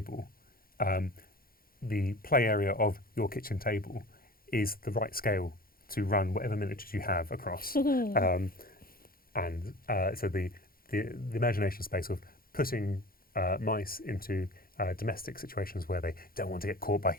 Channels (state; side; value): late; right; 0.42 ms